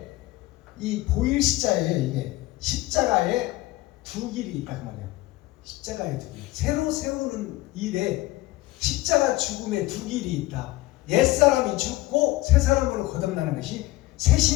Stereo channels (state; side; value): quieter; right; 18.4 dB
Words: 이 보일 시자에 이게 십자가에 두 길이 있다 그 말이야. 십자가에 두 길. 새로 세우는 일에 십자가 죽음에 두 길이 있다. 옛사람이 죽고 새 사람으로 거듭나는 것이 새